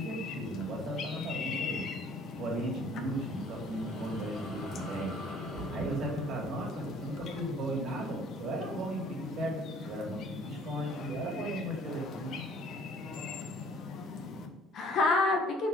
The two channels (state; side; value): normal; both; correlation 0.56